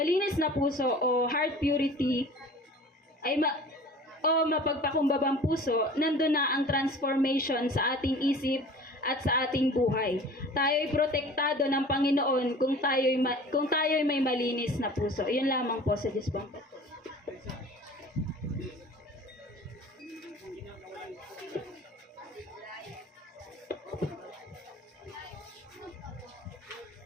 na puso o heart purity, o mapagpakumbabang puso, nandun na ang transformation sa ating isip at sa ating buhay. Tayo'y protektado ng Panginoon kung tayo'y may malinis na puso. Yun lamang po sa Dispampat.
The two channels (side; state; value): both; normal; correlation 0.43